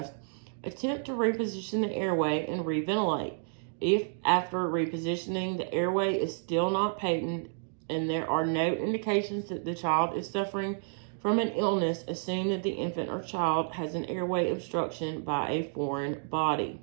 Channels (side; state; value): left; silent; digital silence